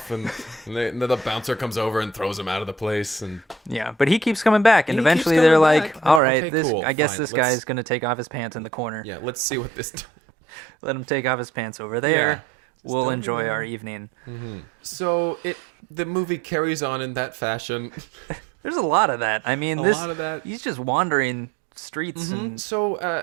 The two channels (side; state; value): left; drops out; at 6.2 s